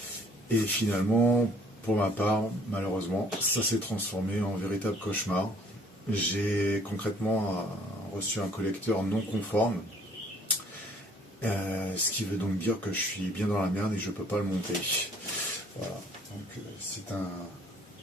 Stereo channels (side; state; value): both; normal; correlation 0.59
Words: Et finalement, pour ma part, malheureusement, ça s'est transformé en véritable cauchemar. J'ai concrètement reçu un collecteur non conforme, ce qui veut donc dire que je suis bien dans la merde et je ne peux pas le monter. Voilà, donc c'est